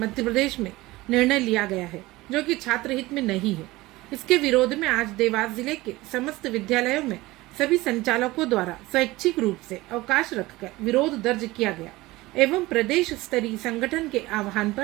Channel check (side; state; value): left; quieter; 19.6 dB